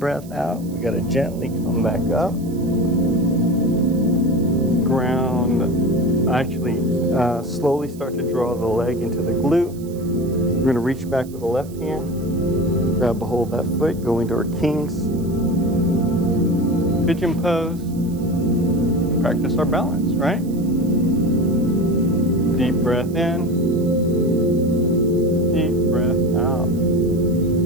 out, we got to gently come back up. Ground, actually slowly start to draw the leg into the glute. We're going to reach back with the left hand. Grab a hold of that foot, go into our king's pigeon pose. Practice our balance, right? Deep breath in. Deep breath out.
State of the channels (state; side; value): noise; right; hiss, 23 dB below the sound